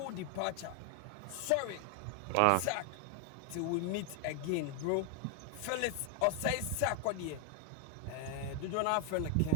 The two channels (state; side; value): different; both; correlation 0.01